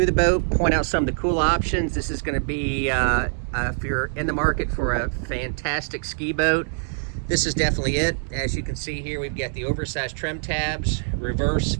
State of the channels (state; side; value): silent; left; 63 dB below the other